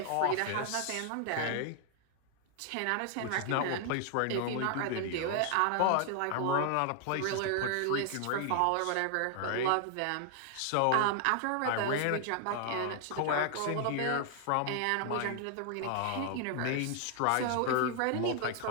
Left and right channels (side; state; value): both; different; correlation 0.00